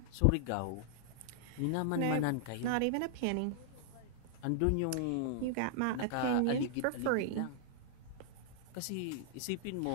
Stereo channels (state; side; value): different; both; correlation -0.01